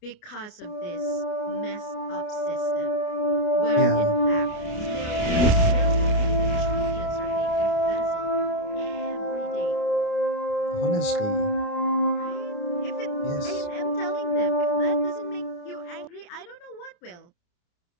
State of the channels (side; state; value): right; late; 29 ms